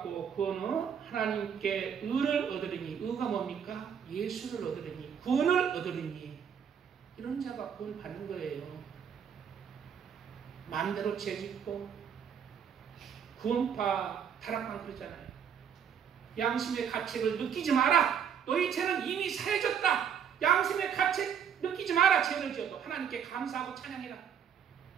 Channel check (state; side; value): quieter; left; 7.9 dB